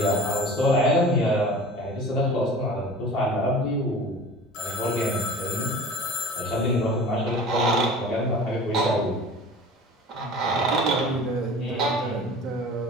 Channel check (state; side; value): normal; both; correlation 0.40